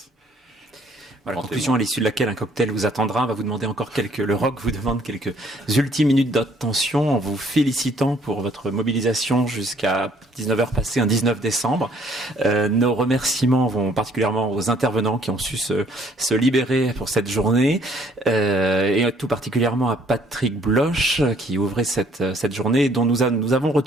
Voilà, conclusion à l'issue de laquelle un cocktail vous attendra. On va vous demander encore le rock vous demande quelques ultimes minutes d'attention en vous félicitant pour votre mobilisation jusqu'à 19h passé un 19 décembre. Nos remerciements vont particulièrement aux intervenants qui ont su se libérer pour cette journée et tout particulièrement à Patrick Bloch qui ouvrait cette journée dont nous avons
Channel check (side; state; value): both; normal; correlation 0.62